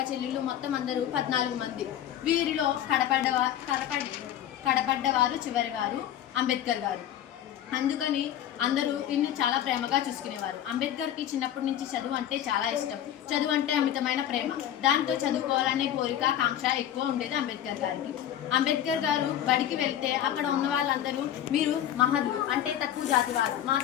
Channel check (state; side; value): quieter; right; 11.1 dB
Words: చెల్లెళ్ళు మొత్తం అందరూ 14 మంది. వీరిలో కడపడ్డవారు చివరివారు అంబేద్కర్ గారు. అందుకని అందరూ ఇన్ని చాలా ప్రేమగా చూసుకునేవారు. అంబేద్కర్కి చిన్నప్పటి నుంచి చదువు అంటే చాలా ఇష్టం. చదువు అంటే అమితమైన ప్రేమ. దాంతో చదువుకోవాలనే కోరిక, కాంక్ష ఎక్కువ ఉండేది అంబేద్కర్ గారికి. అంబేద్కర్ గారు బడికి వెళ్తే అక్కడ ఉన్న వాళ్ళందరూ మీరు మహద్లు అంటే తక్కువ జాతి వారు,